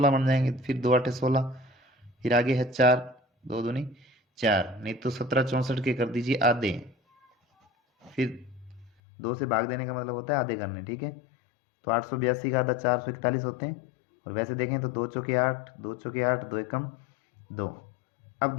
बन जाएंगे, फिर 2 अट्ठे 16, फिर आगे है 4, 2 दूनी 4, नहीं तो 1764 के कर दीजिए आधे। फिर 2 से भाग देने का मतलब होता है आधे करने, ठीक है। तो 882 का आधा 441 होते हैं। और वैसे देखें तो 2 चौके 8, 2 चौके 8, 2 एकम 2। अब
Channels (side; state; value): right; drops out; at 8.9 s